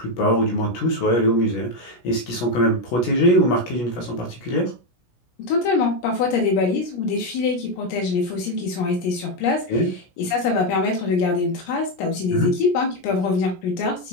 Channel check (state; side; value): late; right; 17 ms